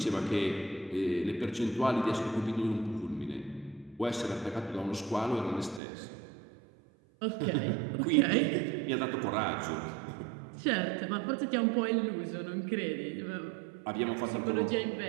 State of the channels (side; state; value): left; drops out; at 5.8 s